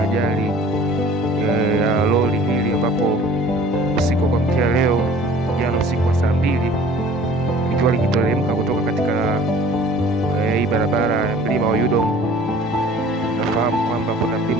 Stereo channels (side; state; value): both; normal; correlation 0.49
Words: ajali ya lori hili, ambapo usiku kwa mkia leo jana usiku wa saa 2 likiwa likiteremka kutoka katika hii barabara ya mlima wa Yudom. Nafahamu kwamba kuna